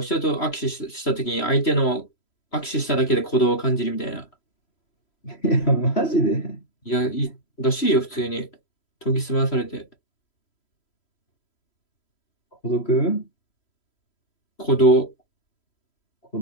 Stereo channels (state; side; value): late; right; 3.0 ms